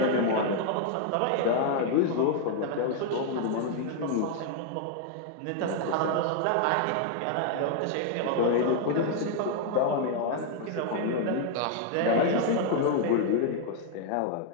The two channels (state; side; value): different; both; correlation 0.00